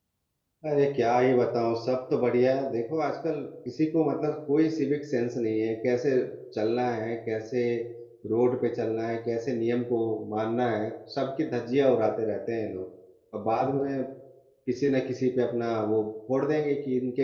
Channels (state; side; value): identical; both; correlation 1.00